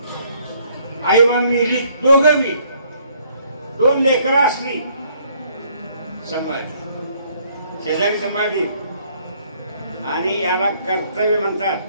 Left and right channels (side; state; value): both; inverted; correlation -0.65